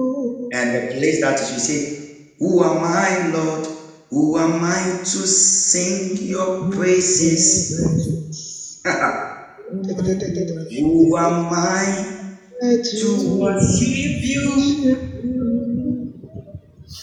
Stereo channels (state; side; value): identical; both; correlation 1.00